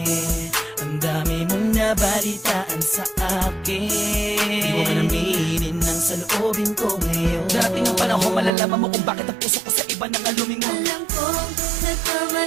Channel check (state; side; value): drops out; left; at 8.5 s